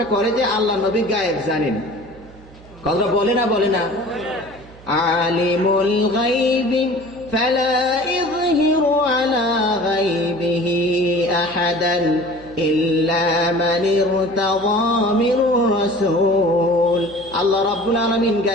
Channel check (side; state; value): right; noise; hum, 21 dB below the sound